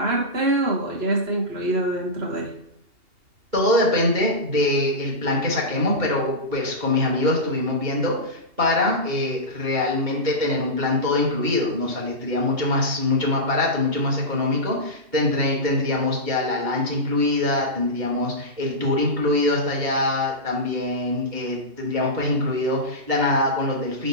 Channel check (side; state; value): left; late; 2.8 ms